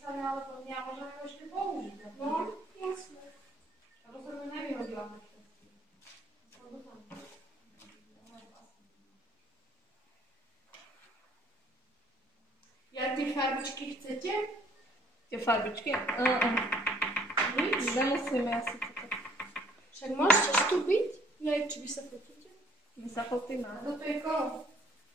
napísané, ale to ja môžeme ho ešte použiť. No, jasne. Rozhodne nevyhodila to všetky. Ja tie farbičky chcete? Tie farbičky? Nič? Nemusíme asi toto. Však môžete vstúpiť? Ja, či vy sa fotíte? My sa fotíme. A toto je koho?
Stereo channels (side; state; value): both; normal; correlation 0.60